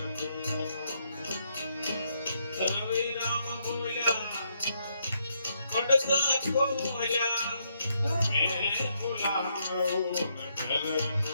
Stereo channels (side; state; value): both; inverted; correlation -0.76